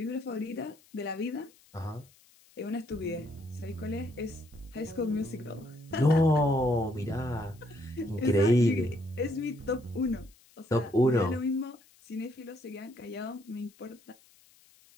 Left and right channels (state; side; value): noise; left; hiss, 28 dB below the sound